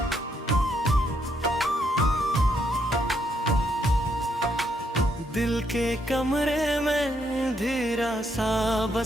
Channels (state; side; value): normal; both; correlation 0.75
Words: दिल के कमरे में धीरा सा